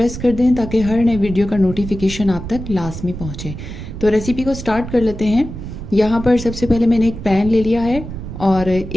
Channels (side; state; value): right; noise; rumble, 9 dB below the sound